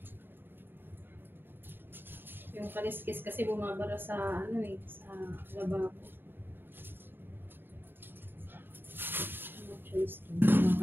Yung kaliskis kasi bumabara sa ano eh, sa lababo. No choice to.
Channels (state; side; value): late; left; 0.098 ms